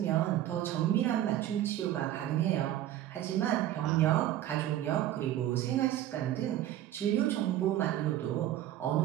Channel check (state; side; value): quieter; left; 12.8 dB